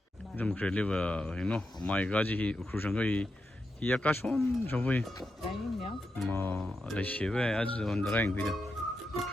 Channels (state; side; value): normal; both; correlation 0.87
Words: 좀 그래 리버 you know my god 이 Ukur 상거이 이 약간 좀 보이 라이냐? 뭐 레시베 아주 온드라인 비다